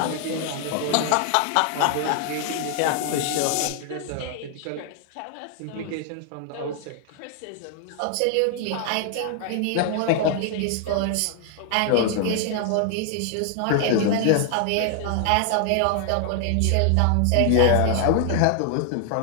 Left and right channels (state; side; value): different; both; correlation 0.00